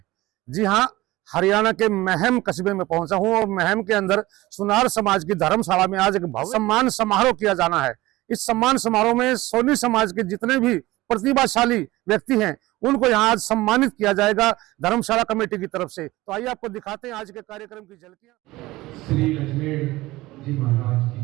जी हां, हरियाणा के महम कस्बे में पहुंचा हूं और महम के अंदर सुनार समाज की धर्मशाला में आज एक भव्य सम्मान समारोह किया जाना है। इस सम्मान समारोह में सोनी समाज के जितने भी प्रतिभाशाली व्यक्ति हैं उनको यहाँ आज सम्मानित किया जाएगा धर्मशाला कमेटी की तरफ से। तो आइए आपको दिखाते हैं आज के कार्यक्रम की झलकियां। श्री अजमेर जी महाराज की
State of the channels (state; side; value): quieter; left; 18.7 dB